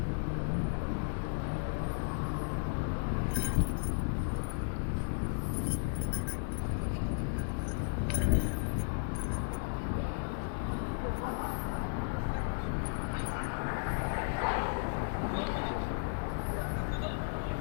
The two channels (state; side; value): silent; right; digital silence